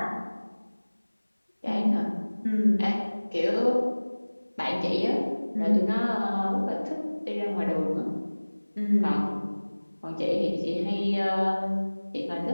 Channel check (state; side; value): inverted; both; correlation -1.00